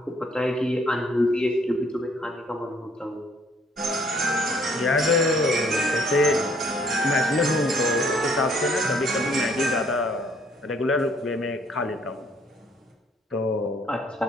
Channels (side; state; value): both; normal; correlation 0.63